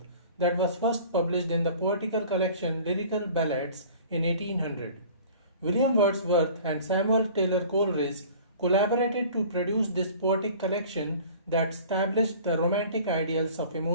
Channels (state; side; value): inverted; both; correlation -0.45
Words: that was first published in the poetical collection Lyrical Ballads in 1800. William Wordsworth and Samuel Taylor Coleridge collaborated to produce this poetic collection that established the romantic ideals of